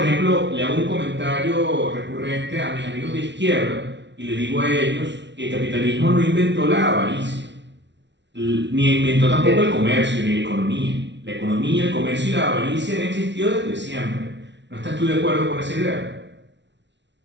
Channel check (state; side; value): late; left; 0.51 ms